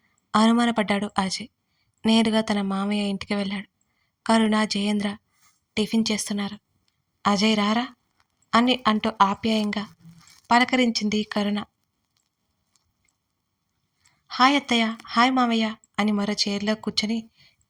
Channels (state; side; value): identical; both; correlation 1.00